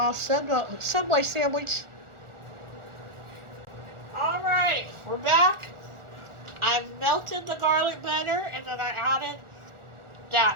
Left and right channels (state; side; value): late; left; 1.4 ms